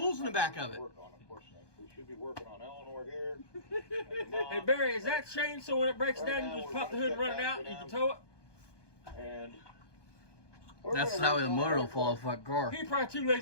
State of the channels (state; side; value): late; right; 1.2 ms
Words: in the back of it. We should be working on Eleanor here. Hey, Barry, is that chain so when it breaks down, you just pop the hood and run it out and you can tow it? And That's how the motor will fall off that car. He probably too